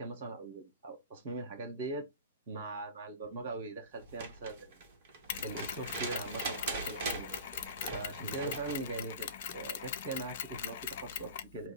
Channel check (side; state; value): both; inverted; correlation -0.34